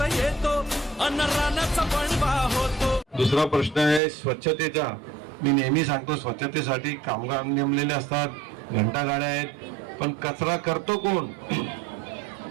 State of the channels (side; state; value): left; drops out; at 4.0 s